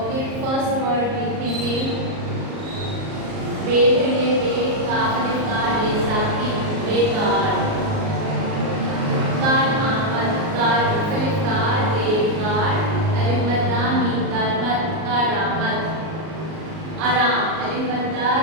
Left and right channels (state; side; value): late; left; 38 ms